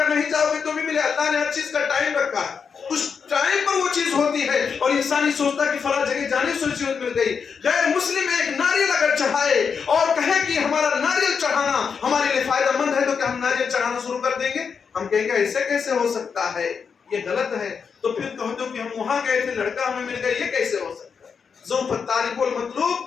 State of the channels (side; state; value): right; quieter; 6.1 dB